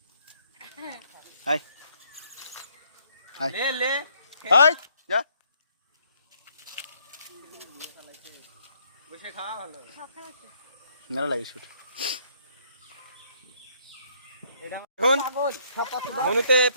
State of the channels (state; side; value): inverted; both; correlation -0.68